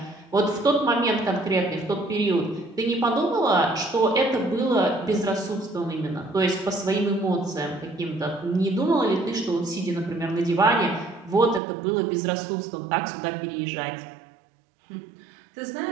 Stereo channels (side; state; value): left; drops out; at 11.6 s